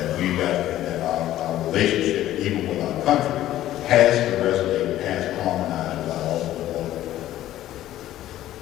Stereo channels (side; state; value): right; quieter; 13.6 dB